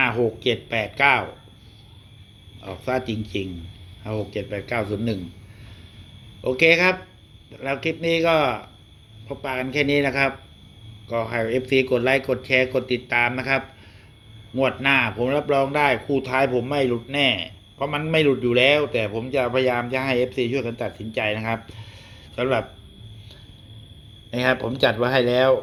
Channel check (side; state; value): both; identical; correlation 1.00